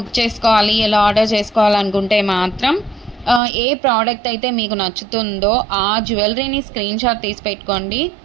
చేసుకోవాలి, ఎలా ఆర్డర్ చేసుకోవాలనుకుంటే మాత్రం ఏ ప్రోడక్ట్ అయితే మీకు నచ్చుతుందో ఆ జ్యువెలరీని స్క్రీన్ షాట్ తీసి పెట్టుకోండి.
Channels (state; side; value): drops out; left; at 3.4 s